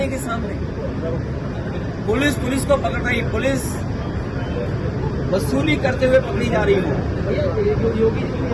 के सामने। पुलिस को पकड़ रही, पुलिस वसूली करते हुए पकड़ी जा रही हो।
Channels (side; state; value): both; identical; correlation 1.00